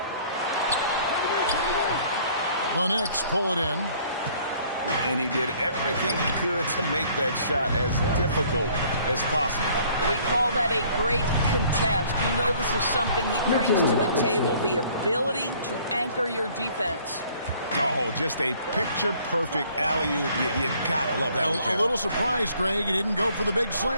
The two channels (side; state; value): both; inverted; correlation -0.58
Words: The Knicks pull it in. And he did everything he could to make that shot as difficult as possible. We call that a great contest. You know this is something he brings to the table, the ability to anchor your defense. Oh, just a picture-perfect alley-oop. You gotta love that one, Kevin. A little surprised, Greg. He didn't go for the big